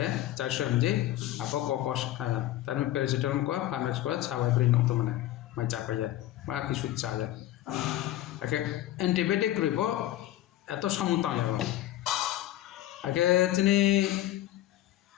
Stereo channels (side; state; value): right; quieter; 14.1 dB